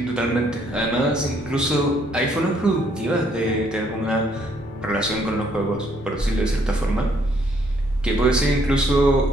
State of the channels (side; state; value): both; normal; correlation 0.68